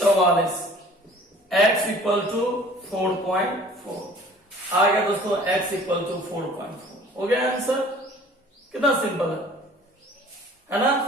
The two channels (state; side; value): normal; both; correlation 0.50